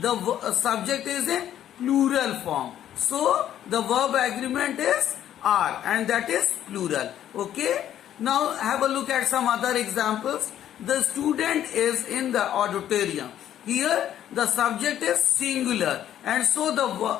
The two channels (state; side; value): quieter; right; 11.1 dB